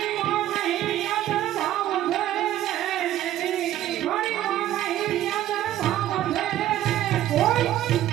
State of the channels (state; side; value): quieter; left; 12.9 dB